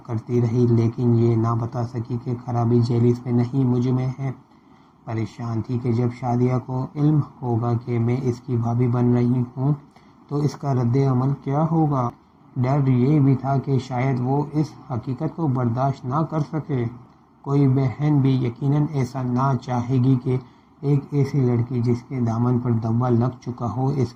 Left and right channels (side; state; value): both; identical; correlation 1.00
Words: کرتی رہی، لیکن یہ نہ بتا سکی کہ خرابی جیلس میں نہیں مجھ میں ہے۔ پریشان تھی کہ جب شادیہ کو علم ہوگا کہ میں اس کی بھابھی بن رہی ہوں تو اس کا رد عمل کیا ہوگا۔ ڈر یہ بھی تھا کہ شاید وہ اس حقیقت کو برداشت نہ کر سکے۔ کوئی بہن بھی یقیناً ایسا نہ چاہے گی کہ ایک ایسی لڑکی جس کے دامن پر دوا لگ چکا ہو اس